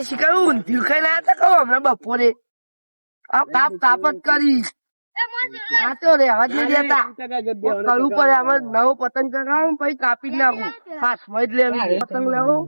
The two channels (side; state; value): both; inverted; correlation -1.00